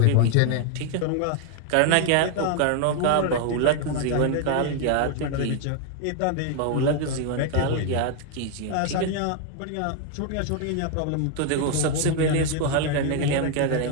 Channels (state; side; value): different; both; correlation 0.00